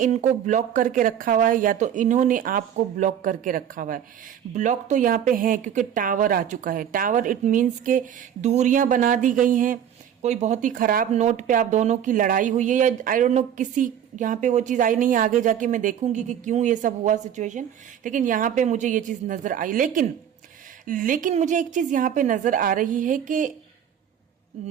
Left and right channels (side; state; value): left; quieter; 9.4 dB